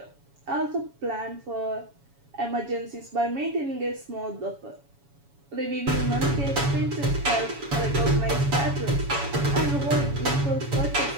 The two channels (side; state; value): left; late; 7.1 ms